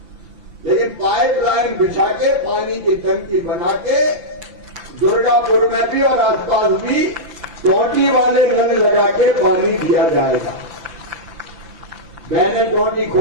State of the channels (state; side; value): late; left; 5.9 ms